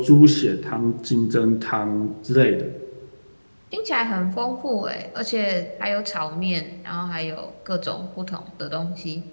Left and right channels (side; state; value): both; inverted; correlation -1.00